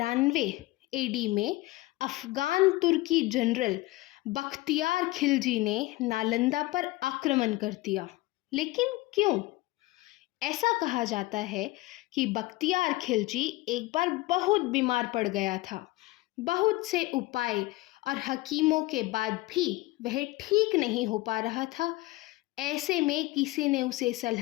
एडी में अफगान तुर्की जनरल बख्तियार खिलजी ने नालंदा पर आक्रमण कर दिया। लेकिन क्यों? ऐसा कहा जाता है कि बख्तियार खिलजी एक बार बहुत बीमार पड़ गया था। बहुत से उपाय और हकीमों के बाद भी वह ठीक नहीं हो पा रहा था। ऐसे में किसी ने उसे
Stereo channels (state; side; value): quieter; right; 19.6 dB